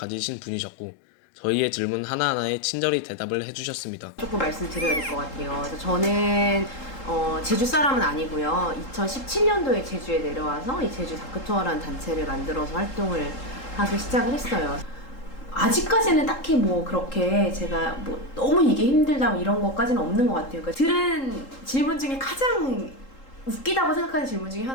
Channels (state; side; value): late; right; 3.8 ms